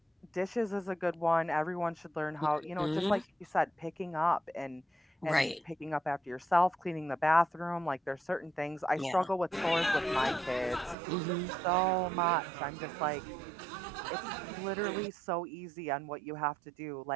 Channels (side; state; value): left; drops out; at 11.0 s